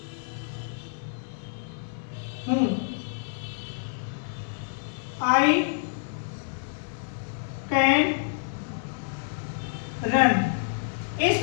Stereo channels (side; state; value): right; silent; 59 dB below the other